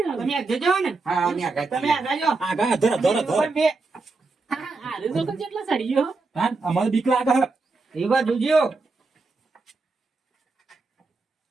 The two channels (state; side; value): quieter; left; 3.8 dB